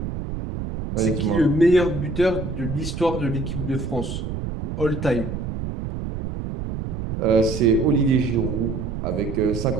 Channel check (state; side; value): noise; right; rumble, 5 dB below the sound